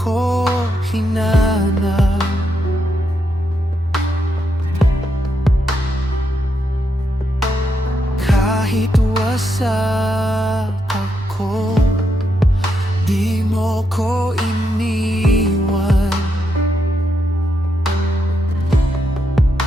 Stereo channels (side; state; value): both; normal; correlation 0.81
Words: hinanap. Kahit wasak ako, di mo ko iniwan.